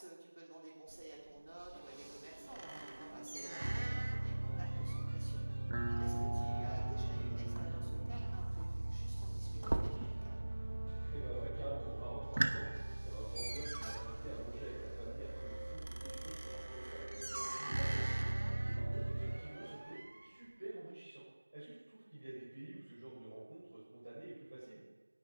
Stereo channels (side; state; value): both; inverted; correlation -1.00